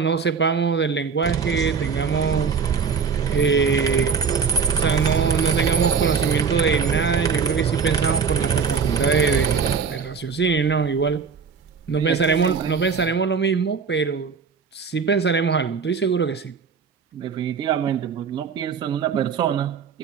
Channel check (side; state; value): left; quieter; 5.9 dB